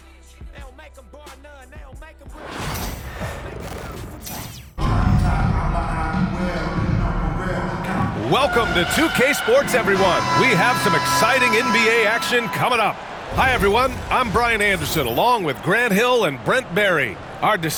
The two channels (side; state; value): both; identical; correlation 1.00